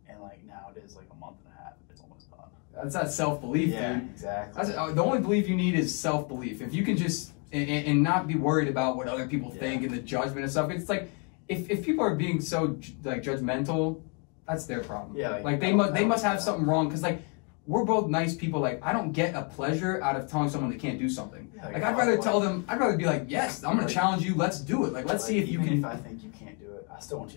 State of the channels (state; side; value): quieter; right; 35.5 dB